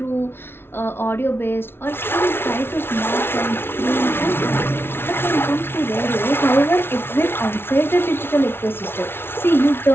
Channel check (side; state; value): right; late; 0.11 ms